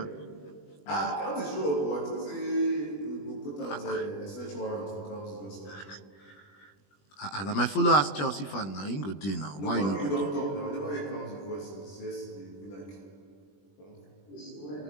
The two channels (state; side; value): late; right; 20 ms